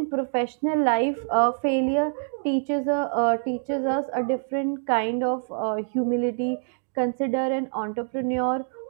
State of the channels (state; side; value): silent; left; digital silence